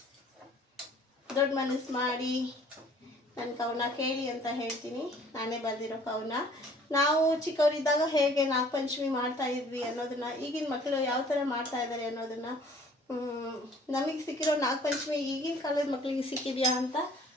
ದೊಡ್ಡ ಮನಸ್ಸು ಮಾಡಿ ನನ್ನ ಕವನ ಕೇಳಿ ಅಂತ ಹೇಳ್ತೀನಿ. ನಾನೇ ಬರೆದಿರೋ ಕವನ. ನಾವು ಚಿಕ್ಕವರಿದ್ದಾಗ ಹೇಗೆ ನಾಗಪಂಚಮಿ ಮಾಡ್ತಾ ಇದ್ವಿ ಅನ್ನೋದನ್ನು, ಈಗಿನ ಮಕ್ಕಳು ಯಾವ ಥರ ಮಾಡ್ತಾ ಇದ್ದಾರೆ ಅನ್ನೋದನ್ನು, ನಮಗೆ ಸಿಕ್ಕಿರೋ ನಾಗಪಂಚಮಿ ಈಗಿನ ಕಾಲದ ಮಕ್ಕಳಿಗೆ ಸಿಕ್ಕಿದೆಯಾ ಅಂತ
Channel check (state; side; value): normal; both; correlation 0.54